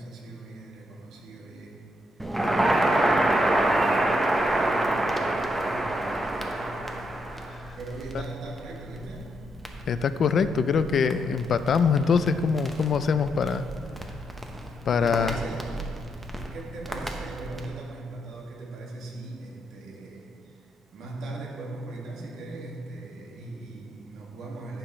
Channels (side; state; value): both; normal; correlation 0.79